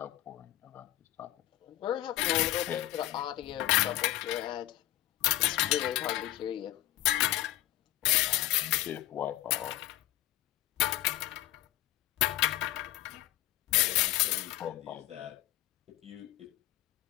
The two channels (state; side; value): quieter; right; 15.1 dB